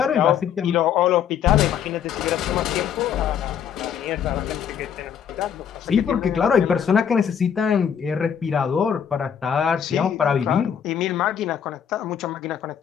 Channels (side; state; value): right; quieter; 8.2 dB